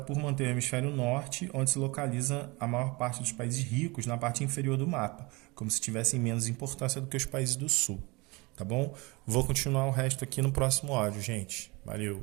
por manter o hemisfério norte, onde se localiza a maior parte dos países ricos na parte inferior do mapa, como se tivessem menos importância do que os países do sul. Tá bom? Vou continuar o resto aqui no próximo áudio, gente. Valeu.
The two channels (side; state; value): left; quieter; 25.4 dB